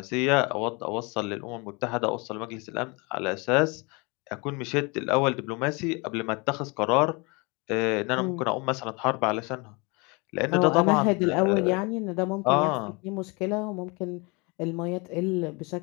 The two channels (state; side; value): quieter; right; 29.0 dB